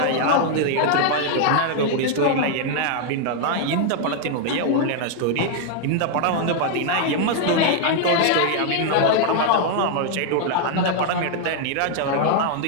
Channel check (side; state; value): both; different; correlation 0.00